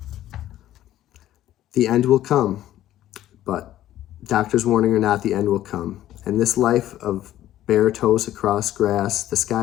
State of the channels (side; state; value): right; quieter; 13.1 dB